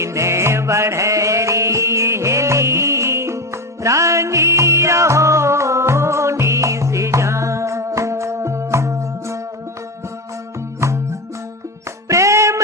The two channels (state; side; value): normal; both; correlation 0.15